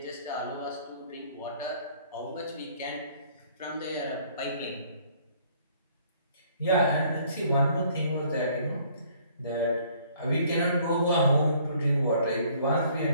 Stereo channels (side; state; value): both; inverted; correlation -0.60